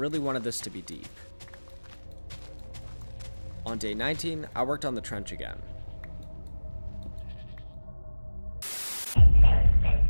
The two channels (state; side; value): inverted; both; correlation -1.00